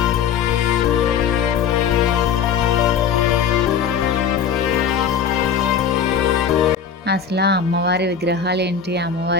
అసలు ఆ అమ్మవారి విగ్రహాలు ఏంటి,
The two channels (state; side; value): quieter; right; 7.1 dB